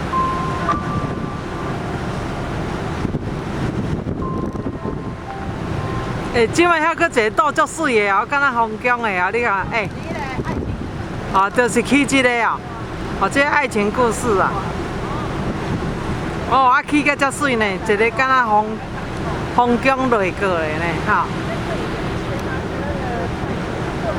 欸，即摆遐搁一个岛足水的哦，敢若风景的啊，你看，欸，哦，就是去即个哦，哦，这爱情故事啊，哦，啊去个足水呢，一个敢若风景落过的呢，哈。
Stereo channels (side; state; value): both; identical; correlation 1.00